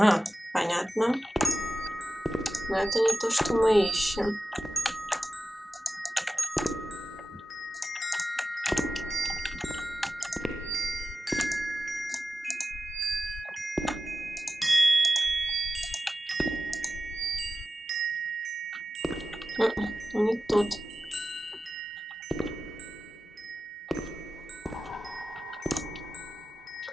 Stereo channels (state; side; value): normal; both; correlation 0.93